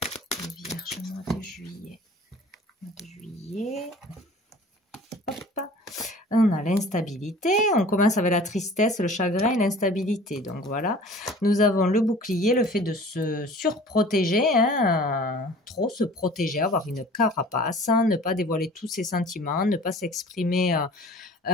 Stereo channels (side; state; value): both; normal; correlation 0.46